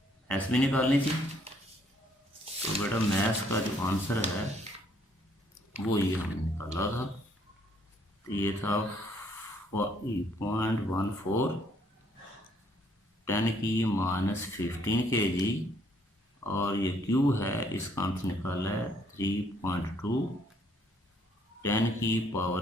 एस भी निकालनी थी। तो बेटा मैथ्स का जो आंसर है वो ये हमने निकाला था। तो ये था 0.14 10⁻15 kg और ये क्यू है, इसका आंसर निकाला है 3.2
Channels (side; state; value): both; normal; correlation 0.66